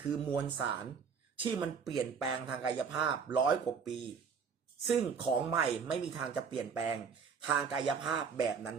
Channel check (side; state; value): left; quieter; 6.1 dB